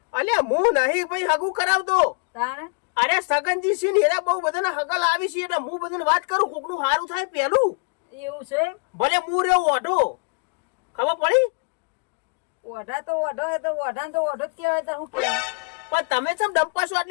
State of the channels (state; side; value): quieter; right; 38.2 dB